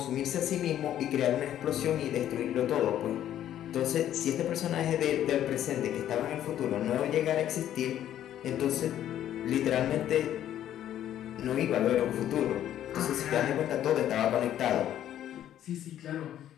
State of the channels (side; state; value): right; quieter; 11.4 dB